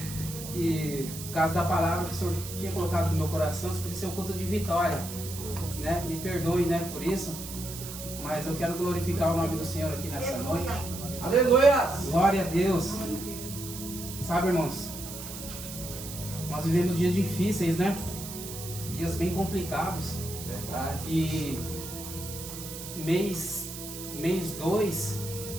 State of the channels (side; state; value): right; noise; hiss, 10 dB below the sound